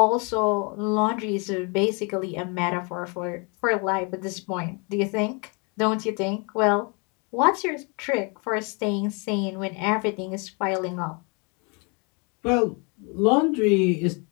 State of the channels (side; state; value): right; quieter; 33.1 dB